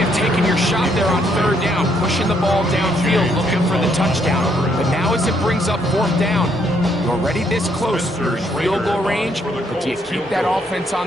of taking your shot there on 3rd down, pushing the ball downfield, looking for the touchdown. But now as it brings up 4th down, you're already this close to field goal range, but do you keep that offense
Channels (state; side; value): normal; both; correlation 0.71